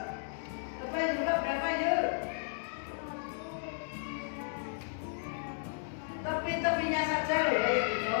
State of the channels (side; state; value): right; silent; digital silence